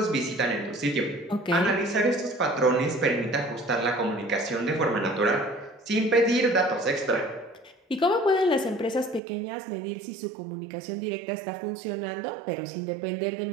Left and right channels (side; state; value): left; drops out; at 9.2 s